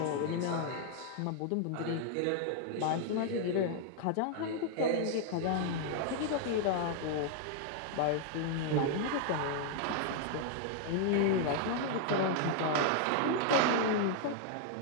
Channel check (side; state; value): both; different; correlation 0.00